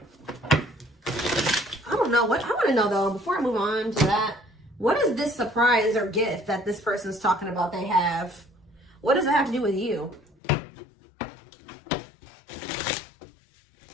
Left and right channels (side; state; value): right; drops out; at 10.4 s